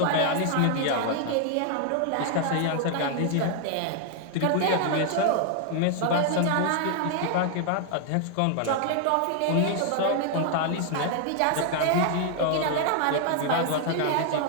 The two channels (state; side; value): different; both; correlation 0.00